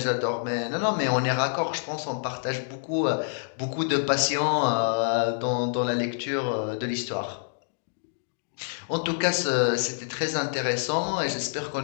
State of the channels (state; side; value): silent; right; digital silence